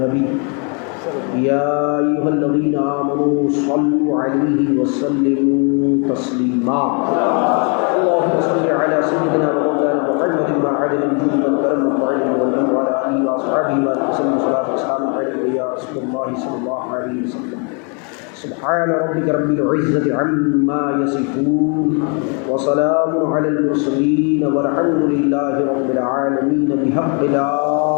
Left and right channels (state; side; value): quieter; right; 36.8 dB